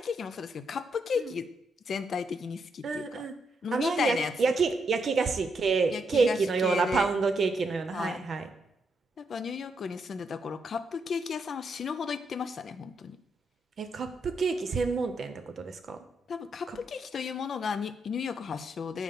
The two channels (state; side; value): normal; both; correlation 0.79